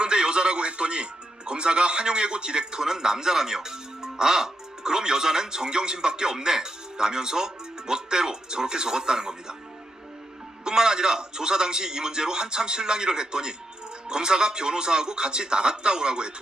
여자라고 했더니 검사가 한용예고 디렉터는 남자라며 아 그럼 여자는 정경심밖에 없네 라면서 멋대로 저렇게 적었다는 겁니다. 뿐만 아니라 조사 당시 이 문제로 한참 실랑이를 했더니 검사가 변호사하고 같이 나갔다 오라고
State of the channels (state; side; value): normal; both; correlation 0.83